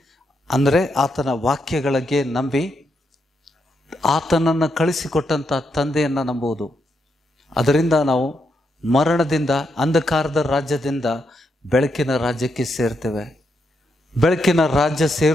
ಅಂದರೆ ಆತನ ವಾಕ್ಯಗಳಿಗೆ ನಂಬಿ ಆತನನ್ನು ಕಳಿಸಿಕೊಟ್ಟಂಥ ತಂದೆಯನ್ನು ನಂಬುವುದು. ಅದರಿಂದ ನಾವು ಮರಣದಿಂದ, ಅಂಧಕಾರದ ರಾಜ್ಯದಿಂದ ಬೆಳಕಿನ ರಾಜ್ಯಕ್ಕೆ ಸೇರ್ತೇವೆ. ಬೆಳಕಿನ ರಾಜ್ಯ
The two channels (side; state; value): both; normal; correlation 0.81